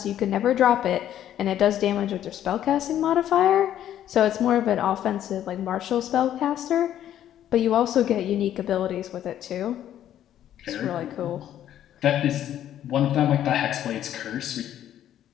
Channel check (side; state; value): right; quieter; 11.2 dB